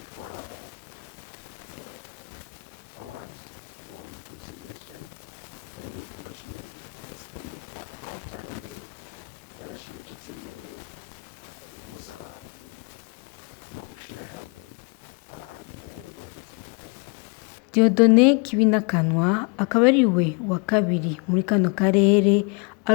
Award for Reconciliation and International Understanding, canke agashimwe kitiriwe guhuza abantu no gushira hamwe abantu ku rwego mpuzamakungu. Dieudonné Kibinakanwa akaba ari we wa kabiri muri kano karere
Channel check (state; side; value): quieter; right; 32.6 dB